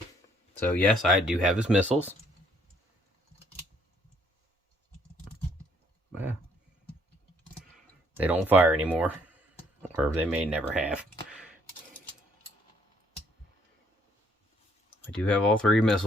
So yes, I do have his missiles. Well, they don't fire anymore. Or they may never have. I do have all 3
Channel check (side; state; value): both; normal; correlation 0.66